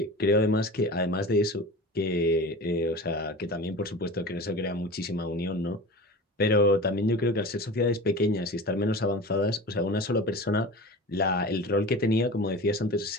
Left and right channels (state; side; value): normal; both; correlation 0.34